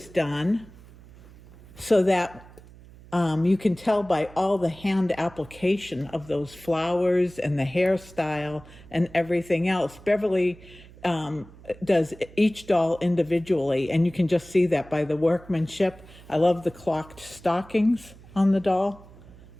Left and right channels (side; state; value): right; noise; hum, 21 dB below the sound